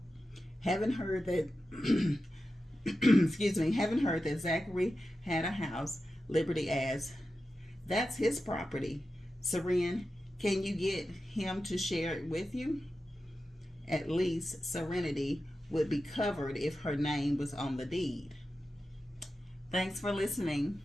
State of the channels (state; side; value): normal; both; correlation 0.92